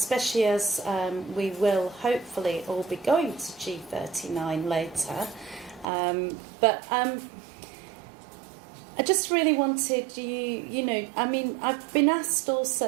as we will hopefully all be going to G39 later. But I just really wanted I've been asked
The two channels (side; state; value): left; drops out; at 5.9 s